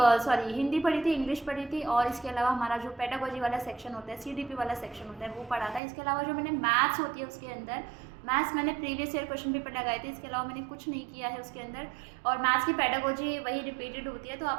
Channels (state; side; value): drops out; left; at 5.8 s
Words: पढ़ी थी, इंग्लिश पढ़ी थी और इसके अलावा हमारा जो पेडागोजी वाला सेक्शन होता है, सीडीपी वाला सेक्शन होता है वो पढ़ा था। इसके अलावा जो मैंने मैथ्स होती है उसके अंदर मैथ्स मैंने प्रीवियस ईयर क्वेश्चन पेपर लगाए थे। इसके अलावा मैंने कुछ नहीं किया है उसके अंदर। और मैथ्स की पेडागोजी वही रिपीटेड होती है, तो